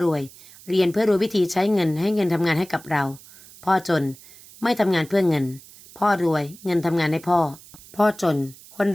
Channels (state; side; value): noise; right; hiss, 21 dB below the sound